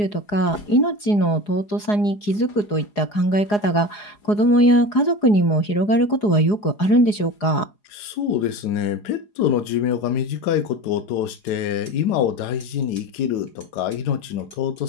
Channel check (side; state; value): right; late; 4.8 ms